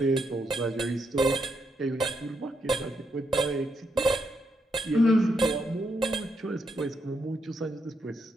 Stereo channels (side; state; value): both; normal; correlation 0.80